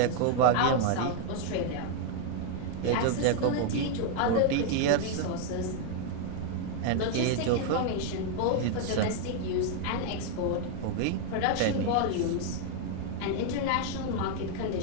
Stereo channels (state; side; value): different; both; correlation 0.00